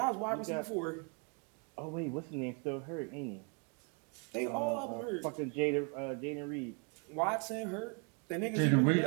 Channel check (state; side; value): quieter; left; 35.3 dB